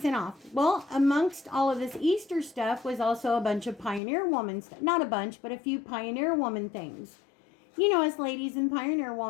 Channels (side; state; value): right; drops out; at 4.0 s